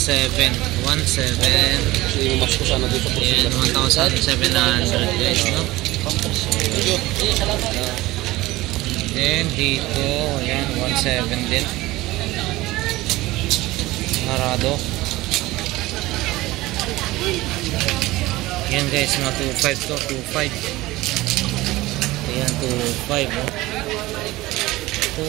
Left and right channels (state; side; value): quieter; left; 18.8 dB